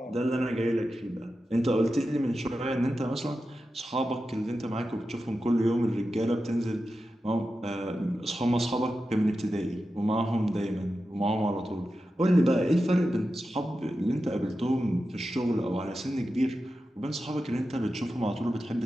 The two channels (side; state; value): both; normal; correlation 0.91